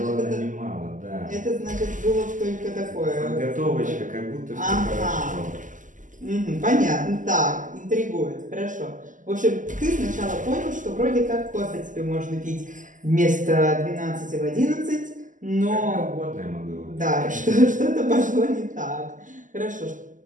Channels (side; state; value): left; late; 0.37 ms